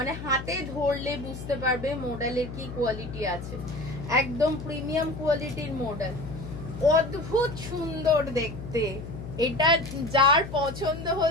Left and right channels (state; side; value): noise; left; hum, 10 dB below the sound